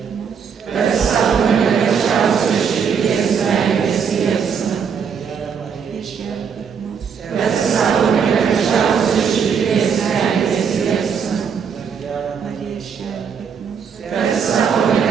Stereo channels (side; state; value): left; quieter; 6.8 dB